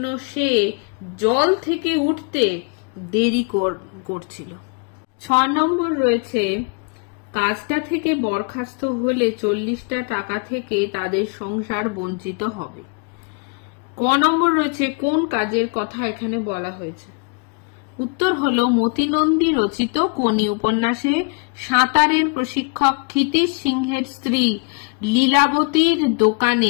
সে জল থেকে উঠতে দেরি করছিল। 6 নম্বর রয়েছে, কাজটা থেকে বরখাস্ত হলে 40টা টাকা থেকে তাদের সংসার বঞ্চিত হবে। ক নম্বর রয়েছে, কোন কাজের কথা এখানে বলা হয়েছে? উত্তর হলো, মতিনন্দী রচিত কোনি উপন্যাসে সাঁতারের প্রশিক্ষক ক্ষিতিশ সিংহের স্ত্রী লীলাবতীর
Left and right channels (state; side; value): quieter; right; 35.4 dB